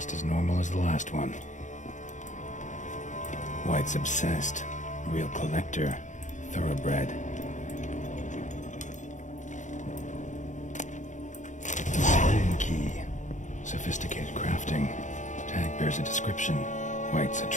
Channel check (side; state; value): right; late; 0.36 ms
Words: as normal as the last one. White's obsessed. Real collector. Thoroughbred. Spoon key. Sophisticated crafting. Tag bears a description. White's a